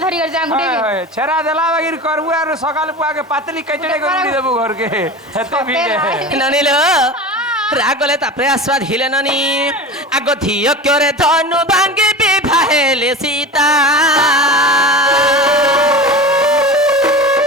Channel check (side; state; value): both; normal; correlation 0.31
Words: ଧରି କରି ଯାଁ ଗୁଟେ ଛେରା ଦେଲା ବାଗିର କରବୁ ଆର ସକାଳ ପୁଆକେ ପାତଲି କେଚଡେ କରି ଦେବୁ ଘରକେ ହେତେ ଭିଡ଼ ননিল রাগলে তারপরে আসবা ধীলে ননি আগ ধিয় করে ধনু ভাঙ্গি বিবাহেলে সীতা